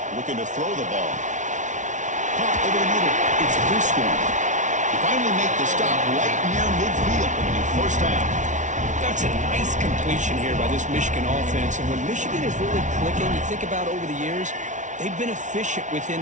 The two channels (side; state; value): left; late; 0.36 ms